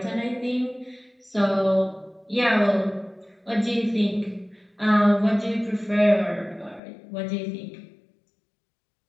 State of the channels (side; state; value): right; drops out; at 6.8 s